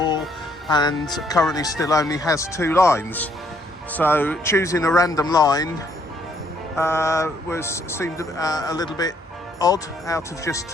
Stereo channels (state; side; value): normal; both; correlation 0.69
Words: and currently still only has 2 lines. So choosing a random line seemed a little bit odd out of just